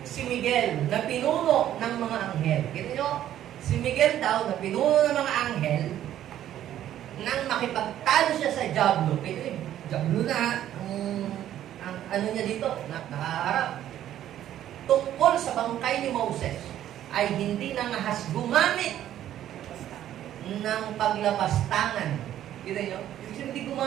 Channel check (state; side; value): quieter; left; 11.8 dB